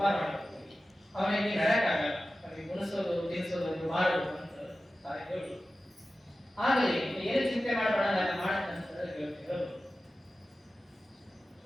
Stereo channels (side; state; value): both; normal; correlation 0.94